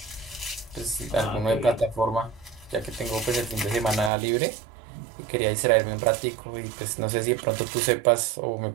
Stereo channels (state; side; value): drops out; left; at 4.1 s